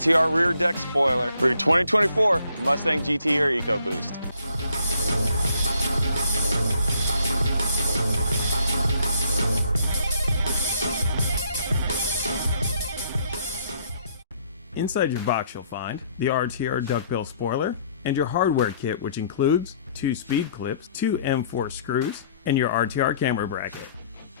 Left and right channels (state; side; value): inverted; both; correlation -0.65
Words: Rear Deck Spoiler for your 2024 Mustang GT or EcoBoost. Inside your box you'll find the RTR duckbill spoiler and your hardware kit, which includes 2 speed clips, 2 M4 screws, and your RTR camera bracket.